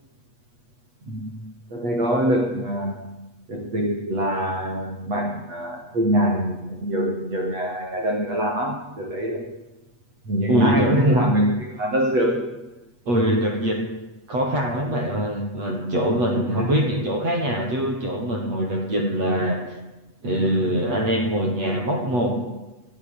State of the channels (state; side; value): late; left; 8.2 ms